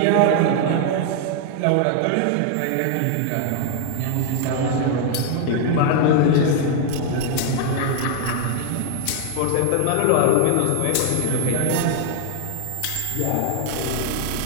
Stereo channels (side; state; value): both; different; correlation 0.00